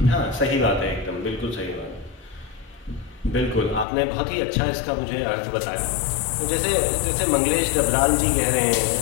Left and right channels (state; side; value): drops out; right; at 3.9 s